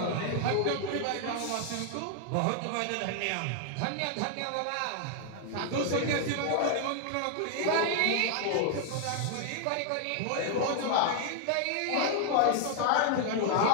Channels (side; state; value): both; different; correlation 0.00